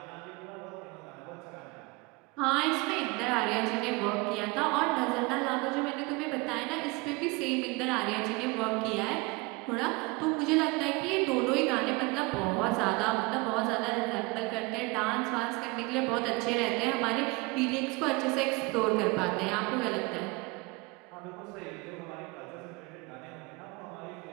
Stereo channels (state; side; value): quieter; left; 25.9 dB